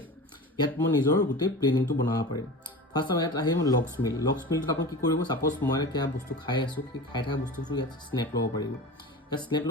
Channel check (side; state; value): both; normal; correlation 0.32